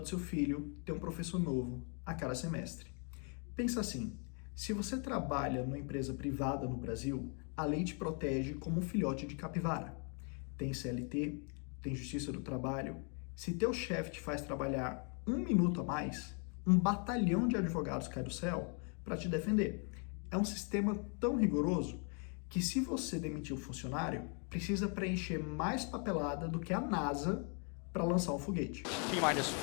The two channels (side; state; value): right; quieter; 39.4 dB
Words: do seu filho tem um professor novo a cada semestre. Pensa assim, se você trabalha numa empresa privada no Brasil, a lei te protege como um filhote de capivara. Tem CLT, tem Justiça do Trabalho. Se teu chefe te faz trabalhar um minuto a mais, um batalhão de advogados cai do céu para te defender. É um sistema tão rigoroso que se você demitir um funcionário, precisa preencher mais papelada do que a NASA para lançar um foguete.